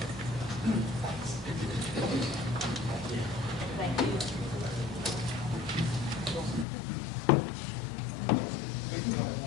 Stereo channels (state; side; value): drops out; right; at 6.7 s